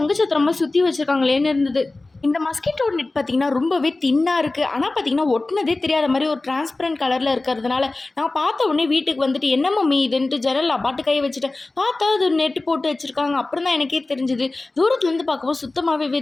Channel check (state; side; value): quieter; right; 3.1 dB